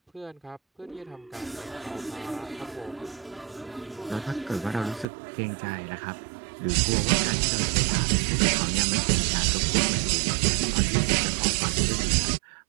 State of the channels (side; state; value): left; drops out; at 5.1 s